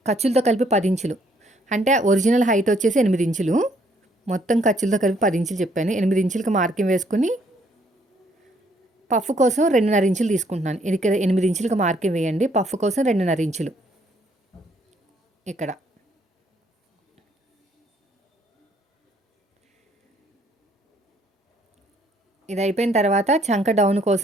ఖర్చులతో కలిపి 10 ఇంచులు. అంటే ఒరిజినల్ హైట్ వచ్చేసి 8 ఇంచులు. మొత్తం ఖర్చులతో కలిపి 10 ఇంచులు చెప్పాను. 8 ఇంచులకి మార్కింగ్ వేసుకుని పఫ్ కోసం 2.5 ఇంచులు తీసుకుంటున్నాను. ఇక్కడ 8 ఇంచులకి మార్కింగ్ వేయండి. పఫ్ కోసం 2.5 ఇంచులు. ఇక్కడ ఇది అయిపోయిన తర్వాత చంక డౌన్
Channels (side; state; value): both; normal; correlation 0.67